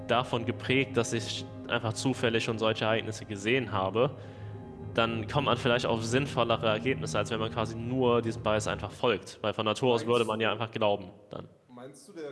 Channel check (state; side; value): identical; both; correlation 1.00